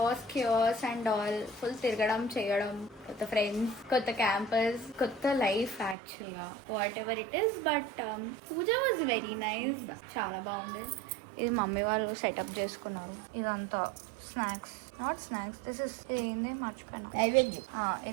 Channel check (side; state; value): left; drops out; at 6.0 s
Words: క్యూస్ అండ్ ఆల్ ఫుల్ తిరగడం చేయడం, కొత్త ఫ్రెండ్స్, కొత్త క్యాంపస్, కొత్త లైఫ్ యాక్చువల్ గా whatever it is. But puja was very nice, చాలా బాగుండేది. ఇది మమ్మీ వాళ్ళు సెటప్ చేసుకున్నారు. ఇదంతా snacks, not snacks, this is ఏంది మర్చిపోయినా,